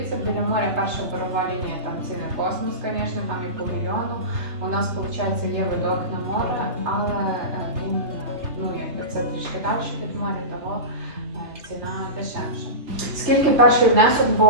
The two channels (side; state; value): left; late; 3.2 ms